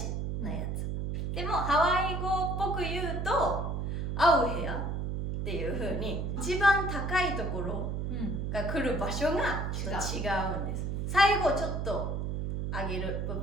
なやつ。でもハワイ語っぽく言うとアウヘアっていう風に一番高いところが来る場所がちょっと違うんです。最後ちょっと上げる部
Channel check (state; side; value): noise; right; hum, 2 dB below the sound